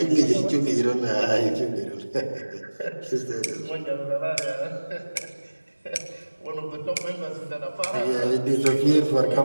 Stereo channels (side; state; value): both; inverted; correlation -1.00